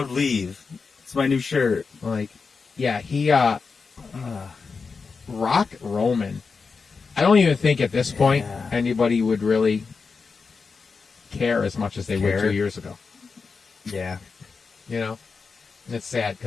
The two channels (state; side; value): quieter; right; 4.9 dB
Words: leave. It's my new shirt. Like, yeah, he Rock Roman. I don't even think at this point anybody would really care as much as they would 2 years ago. Yeah. You know? And it's sad